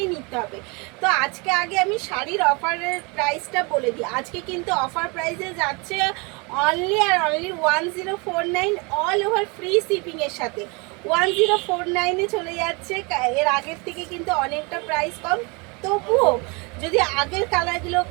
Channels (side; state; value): left; quieter; 29.5 dB